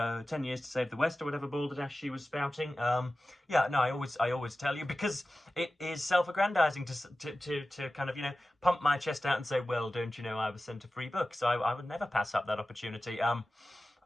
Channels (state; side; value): normal; both; correlation 0.95